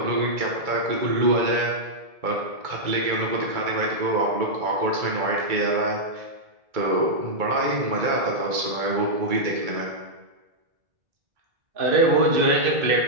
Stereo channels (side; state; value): left; late; 2.3 ms